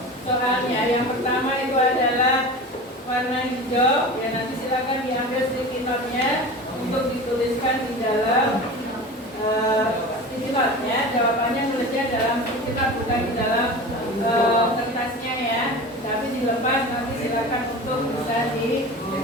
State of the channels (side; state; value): both; normal; correlation 0.33